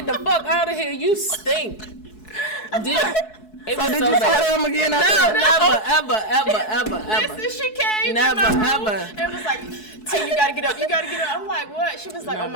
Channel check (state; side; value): late; right; 4.7 ms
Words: the fuck out of here. You stink. It So was did so you bad. tell him again? No, never. Listen, she came Never, in my room ever. and was like, T, you gotta get up, you gotta get up. I'm like, what? She was like, oh my